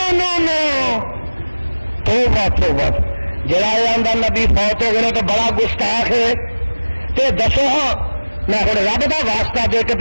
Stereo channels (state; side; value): inverted; both; correlation -1.00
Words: نو توبہ جڑا آندا نبی فوت ہو گئے تو بڑا گستاخ ہے تے دسو ہاں میں ہوں رب دا واسطہ دے کے